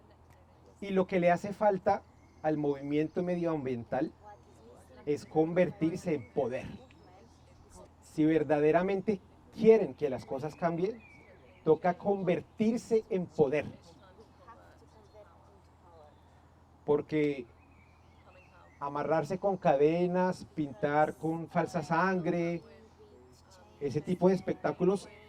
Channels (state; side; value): identical; both; correlation 1.00